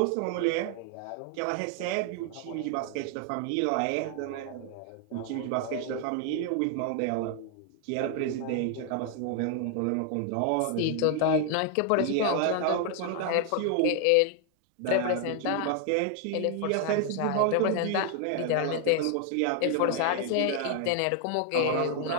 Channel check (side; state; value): both; different; correlation 0.00